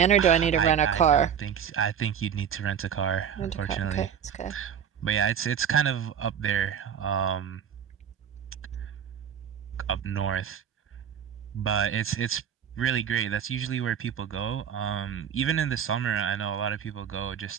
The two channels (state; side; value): quieter; left; 8.3 dB